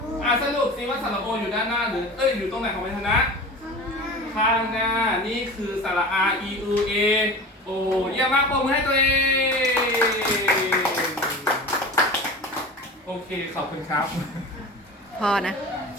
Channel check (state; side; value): normal; both; correlation 0.34